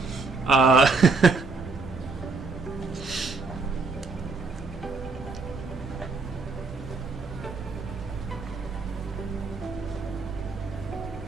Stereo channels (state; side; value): quieter; left; 4.0 dB